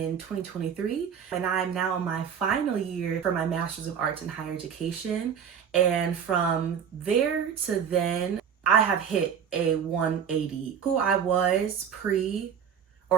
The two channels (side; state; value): left; quieter; 7.8 dB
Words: 2023, and I'm now in my final year for my master's of arts in higher education. And from there to then, I have hit a 180. Who I was pre-graduate